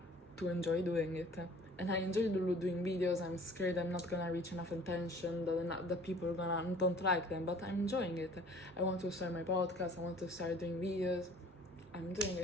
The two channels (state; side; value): normal; both; correlation 0.51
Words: to enjoy doing it. And I enjoy doing videos. I'm scared I'm not gonna reach enough attention, that people are don't like them, but I'm enjoying it. I want to start my podcast, I want to start doing videos. I'm doing